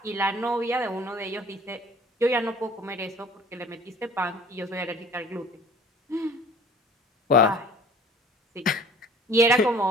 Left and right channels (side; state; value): both; normal; correlation 0.49